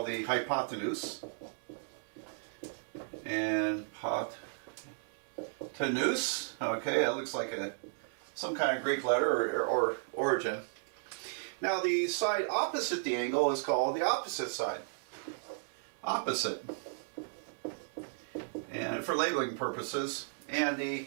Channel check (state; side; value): silent; left; 55 dB below the other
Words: the hypotenuse. And hypotenuse, okay, that looks like some kind of Greek letter or origin. Now the side opposite the angle is called the opposite side. Opposite. And for labeling purposes. And the